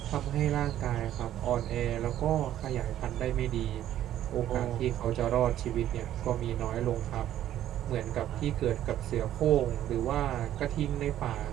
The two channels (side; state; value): left; quieter; 12.0 dB